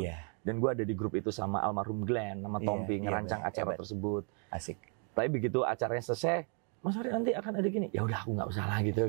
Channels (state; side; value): quieter; left; 39.8 dB